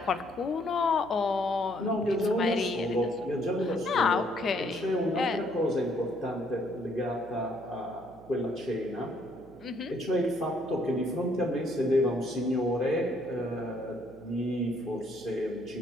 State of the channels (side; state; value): right; noise; hum, 20 dB below the sound